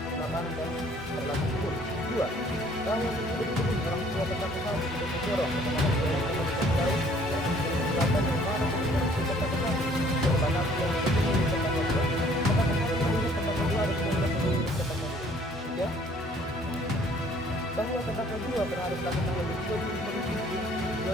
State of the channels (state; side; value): normal; both; correlation 0.58